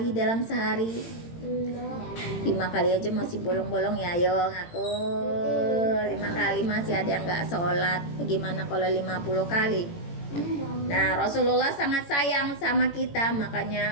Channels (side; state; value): right; late; 18 ms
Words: dalam sehari? 5 kali aja masih bolong-bolong ya, ayo ngaku 5 kali masih ada yang gak sholat. Gimana kalau 50 kali? Nah, Rasulullah sangat sayang sama kita, makanya